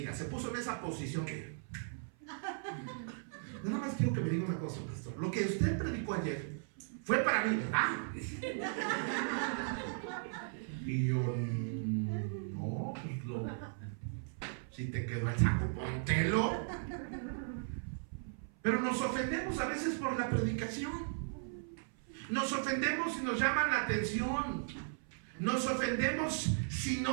se puso en esa posición que... Nada más quiero que me diga una cosa, pastor. Lo que usted predicó ayer fue para mí, ¿verdad? Y yo, no, pues si te quedó el saco, póntelo. Pero nos ofendemos a veces por la predicación. Nos ofendemos si nos llaman la atención. Nos ofendemos si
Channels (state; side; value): silent; left; 53 dB below the other